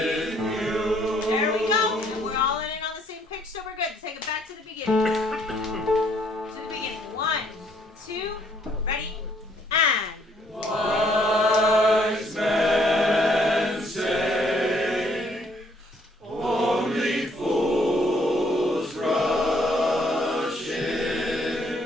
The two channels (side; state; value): both; normal; correlation 0.66